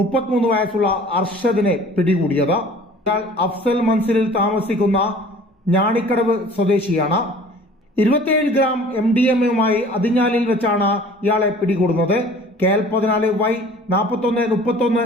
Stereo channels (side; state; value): both; normal; correlation 0.48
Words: 33 വയസ്സുള്ള അർഷദിനെ പിടികൂടിയത്. ഇയാൾ അഫ്സൽ മൻസിലിൽ താമസിക്കുന്ന ഞാണിക്കടവ് സ്വദേശിയാണ്. 27 ഗ്രാം MDMA-യുമായി അതിഞ്ഞാലിൽ വെച്ചാണ് ഇയാളെ പിടികൂടുന്നത്. KL 14Y 4131